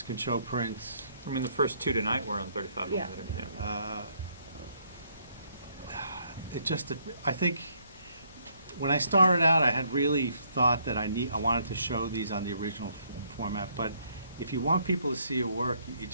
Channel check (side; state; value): both; inverted; correlation -0.69